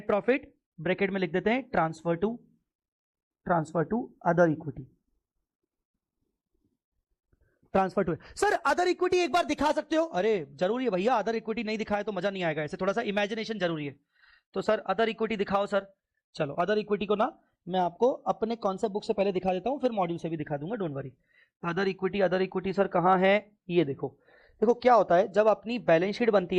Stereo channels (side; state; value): both; identical; correlation 1.00